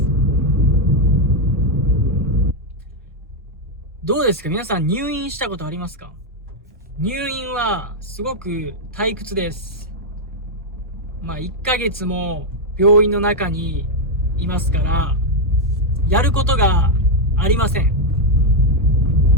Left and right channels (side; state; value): both; normal; correlation 0.02